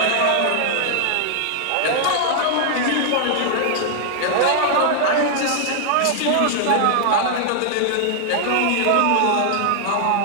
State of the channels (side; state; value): both; different; correlation -0.01